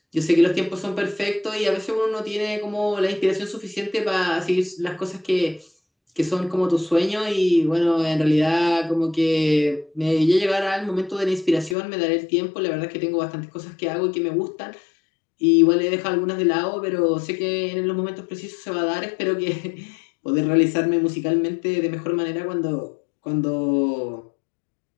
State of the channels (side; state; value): right; drops out; at 11.8 s